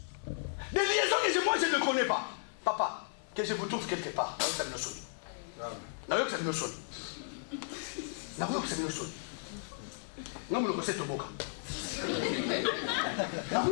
Des liaisons que moi, je ne connais pas. Papa, que je vous trouve quelque part.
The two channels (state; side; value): silent; right; 55 dB below the other